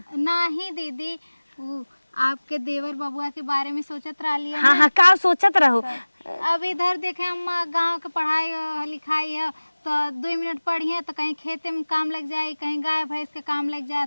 नहीं दीदी, वो आपके देवर बबुआ के बारे में सोचत रही। हाँ हाँ का सोचत रहो। अब इधर देखे अम्मा गांव के पढ़ाई लिखाई है तो 2 मिनट पढ़िए तो कहीं खेते में काम लग जाए, कहीं गाय भैंस के काम लग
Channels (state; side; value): inverted; both; correlation -1.00